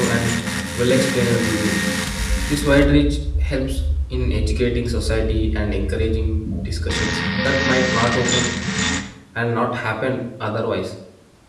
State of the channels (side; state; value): both; identical; correlation 1.00